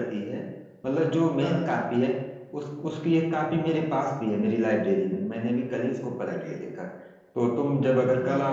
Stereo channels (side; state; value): both; identical; correlation 1.00